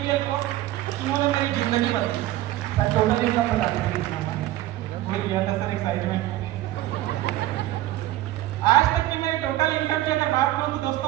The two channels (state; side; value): quieter; left; 15.4 dB